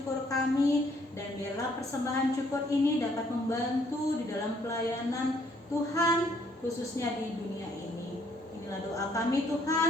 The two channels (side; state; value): both; normal; correlation 0.66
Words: kami, dan biarlah persembahan syukur ini dapat membantu di dalam pelayanan Tuhan, khususnya di dunia ini. Inilah doa kami